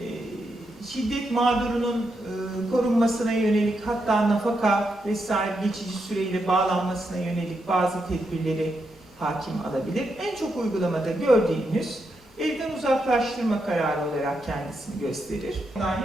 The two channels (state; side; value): normal; both; correlation 0.83